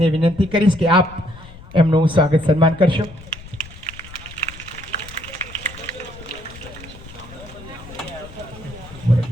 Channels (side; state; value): left; noise; rumble, 17 dB below the sound